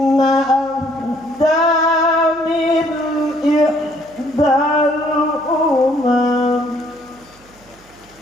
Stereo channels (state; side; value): noise; right; hum, 28 dB below the sound